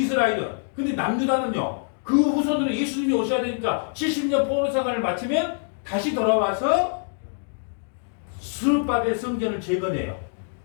근데 남유다는요. 그 후손으로 예수님이 오셔야 되니까 70년 포로생활을 마치면 다시 돌아와서 스룹바벨 성전을 재건해요.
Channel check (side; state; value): right; silent; digital silence